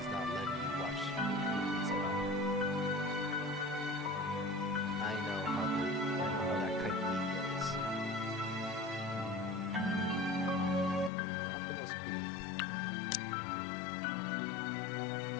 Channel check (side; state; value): right; drops out; at 11.1 s